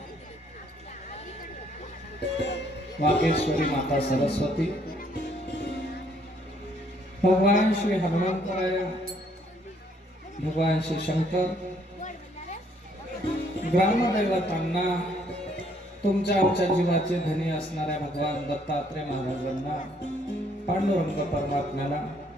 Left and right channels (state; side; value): normal; both; correlation 0.66